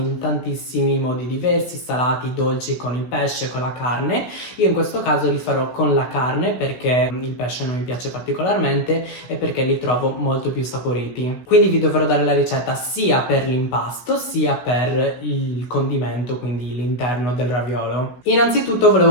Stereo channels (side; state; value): right; late; 16 ms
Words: tantissimi modi diversi, salati, dolci, con il pesce, con la carne. Io in questo caso li farò con la carne perché il pesce non mi piace particolarmente e perché li trovo molto più saporiti. Quindi vi dovrò dare la ricetta sia per l'impasto sia per il condimento, quindi l'interno del raviolo. Innanzitutto